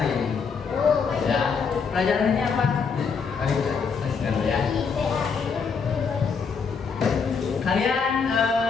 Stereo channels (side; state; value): right; quieter; 5.6 dB